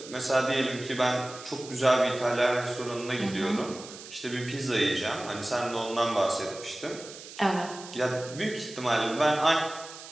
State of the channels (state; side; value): noise; right; hiss, 15 dB below the sound